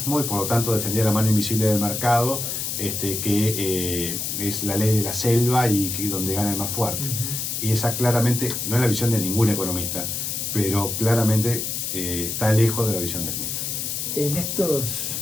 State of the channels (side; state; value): left; noise; hiss, 3 dB below the sound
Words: y por lo tanto defendía la mano invisible del mercado, que es la ley de la selva y donde gana el más fuerte. Y esa claramente no es la visión de ningún economista, pero claramente está lejos de la visión de Smith. En